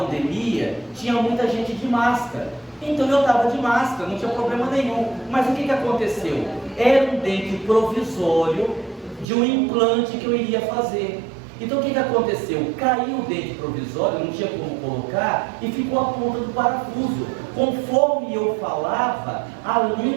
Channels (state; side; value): drops out; left; at 9.2 s